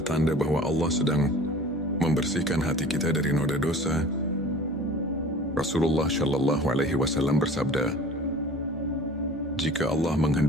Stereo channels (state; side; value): normal; both; correlation 0.43